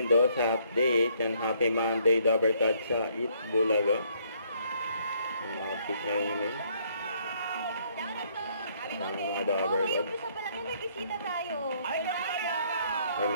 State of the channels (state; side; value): inverted; both; correlation -0.67